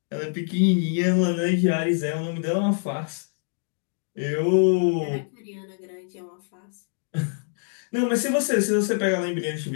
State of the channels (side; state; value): right; silent; 62 dB below the other